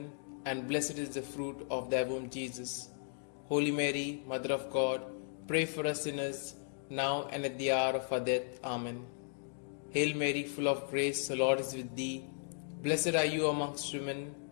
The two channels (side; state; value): right; silent; digital silence